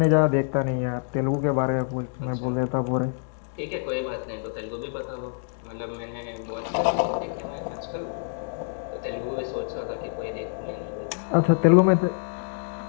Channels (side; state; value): right; silent; digital silence